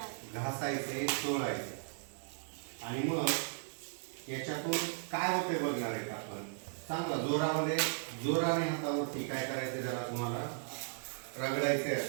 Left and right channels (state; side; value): silent; left; digital silence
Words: घासायचे, चोळायचे. आणि मग याच्यातून काय होते बघणार आहेत आपण. चांगला जोराने हातावरती काय करायचे, जरा तुम्हाला रगडायचे